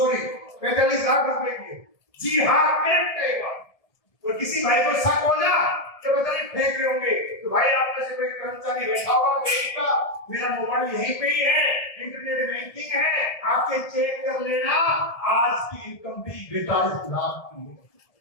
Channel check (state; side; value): late; right; 1.8 ms